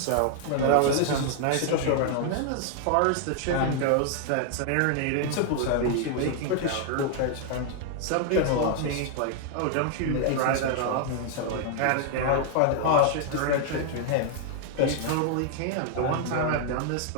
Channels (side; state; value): both; different; correlation 0.00